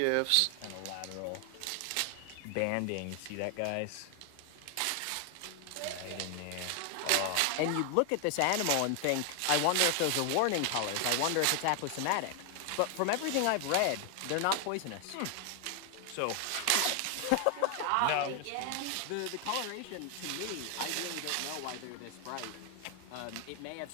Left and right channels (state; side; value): different; both; correlation 0.00